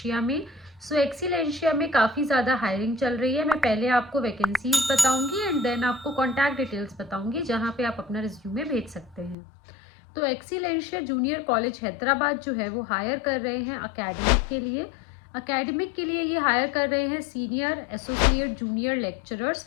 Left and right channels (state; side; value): drops out; right; at 9.3 s